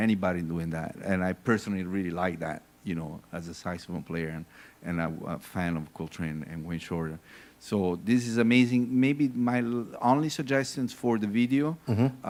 doing that, and I personally really like that, as a saxophone player and a fan of Coltrane and Wayne Shorter. So this is amazing. Maybe my only suggestions for the video,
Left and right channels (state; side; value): identical; both; correlation 1.00